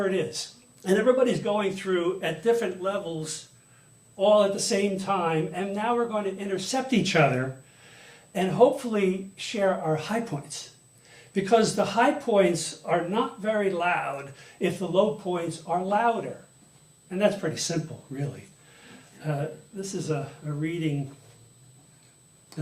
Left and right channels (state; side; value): identical; both; correlation 1.00